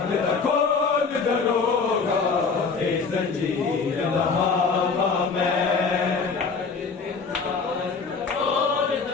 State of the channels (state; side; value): quieter; right; 4.9 dB